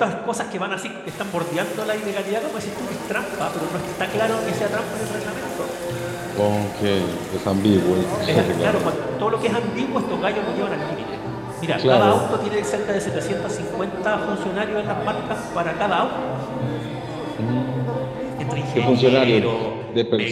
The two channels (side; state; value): both; identical; correlation 1.00